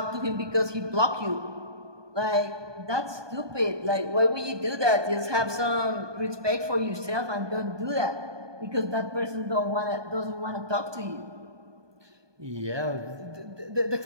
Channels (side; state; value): left; late; 1.2 ms